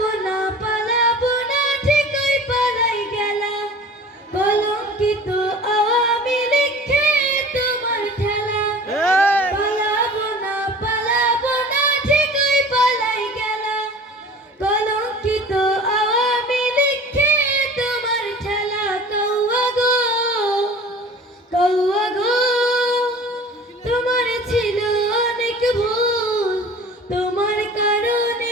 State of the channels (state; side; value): normal; both; correlation 0.42